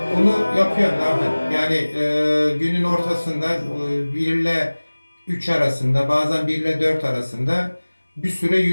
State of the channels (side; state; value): both; inverted; correlation -1.00